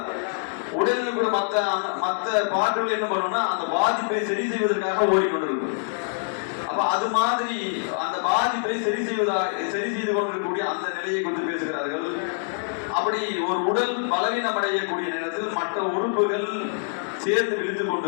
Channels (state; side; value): silent; right; digital silence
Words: உடலில் கூட மற்ற பாட்டுகள் என்ன பண்ணும்னா அந்த பாதிப்பை சரி செய்வதற்காக ஓடிக்கொண்டிருக்கும். அப்ப அது மாதிரி அந்த பாதிப்பை சரி செய்து கொண்டிருக்கக்கூடிய அந்த நிலையை குறித்து பேசுகிறார்கள். அப்படி ஒரு உடல் பலவீனம் அடையக்கூடிய நேரத்தில் மற்ற உறுப்புகள் சேர்ந்து விழுத்துக்